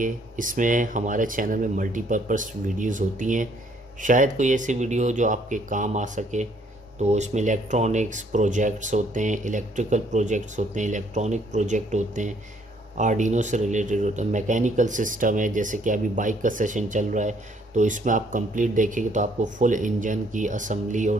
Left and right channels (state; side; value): normal; both; correlation 0.65